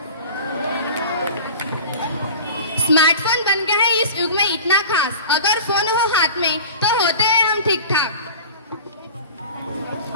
स्मार्टफोन बन गया है इस युग में इतना खास, अगर फोन हो हाथ में तो होते हैं हम ठीक ठाक।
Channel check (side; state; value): both; inverted; correlation -0.37